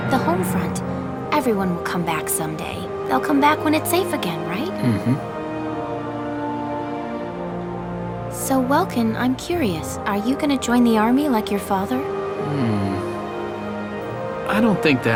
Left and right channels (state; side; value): identical; both; correlation 1.00